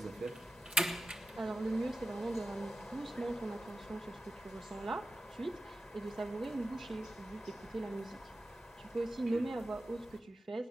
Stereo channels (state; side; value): normal; both; correlation 0.92